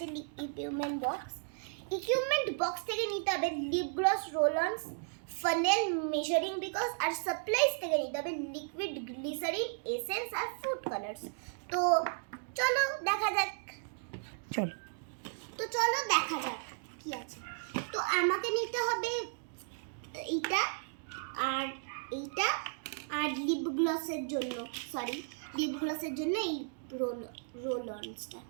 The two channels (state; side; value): silent; left; digital silence